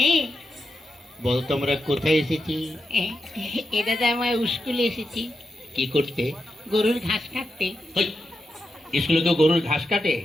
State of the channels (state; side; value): normal; both; correlation 0.87